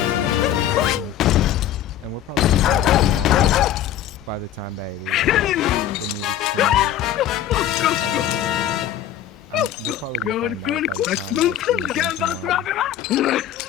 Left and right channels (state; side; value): quieter; right; 10.9 dB